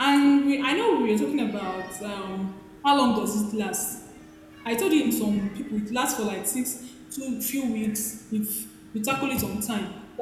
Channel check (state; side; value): identical; both; correlation 1.00